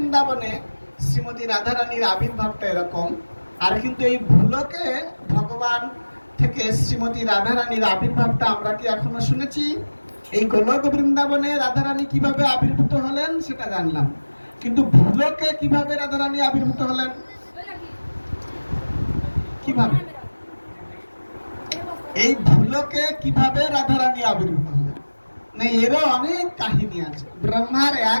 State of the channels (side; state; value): both; inverted; correlation -1.00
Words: শ্রীমতী রাধারানীর আবির্ভাবটা এরকম, আর কিন্তু এই ভুলকে ভগবান থেকে শ্রীমতী রাধারানীর আবির্ভাবটা আমরা কি এখনো শুনেছি? এই গোলক বৃন্দাবনে রাধারানী কিভাবে আবির্ভূত হলেন সেটা জানলাম, কিন্তু ভুলকে কিভাবে রাধারানী আবির্ভূত হলেন, কিভাবে এই ভুলকে কিভাবে রাধারানী আবির্ভূত হলেন, না এরও অনেক কাহিনী আছে। ব্রহ্মার